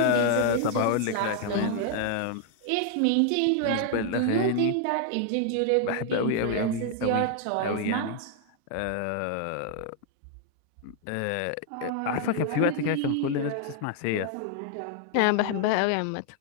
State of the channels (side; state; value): both; different; correlation 0.00